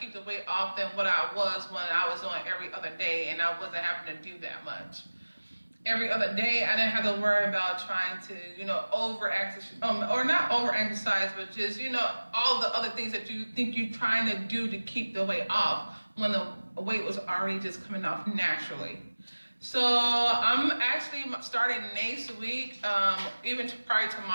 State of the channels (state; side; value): inverted; both; correlation -1.00